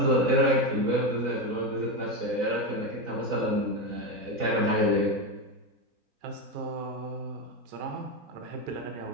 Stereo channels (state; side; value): late; left; 4.0 ms